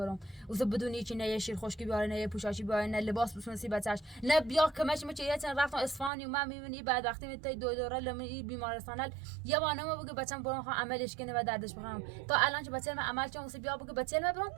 واسه بدون هیچ نه یه شیر خشکی بیاره نه یه پوشاشی بیاره نه لباس بسونسی بچهش نه بیا کمش مچ یه چند رفتم اصفهان و من میبینی بعد وقتی میتای دو دوره لمی بیمارستان یه بانه ما بگه بچم برام خواهم عملش کنه و دردش بخوام تا الان که بچه من عمل چون واسه بیا بگه بچه من برام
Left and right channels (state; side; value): drops out; left; at 6.1 s